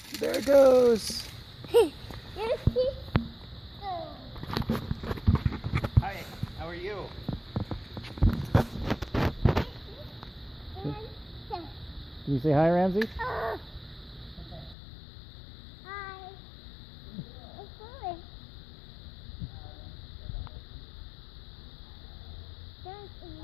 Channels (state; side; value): drops out; right; at 14.8 s